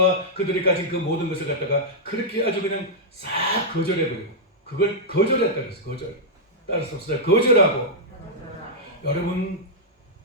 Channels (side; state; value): both; normal; correlation -0.08